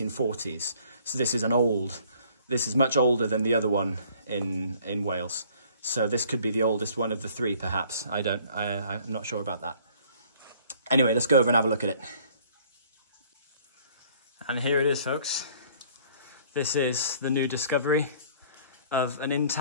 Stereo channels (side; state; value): both; inverted; correlation -0.57